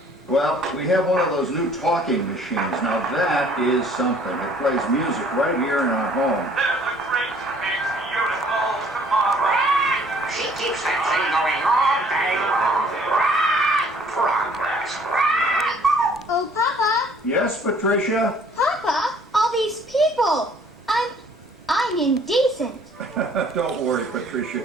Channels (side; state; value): both; normal; correlation 0.58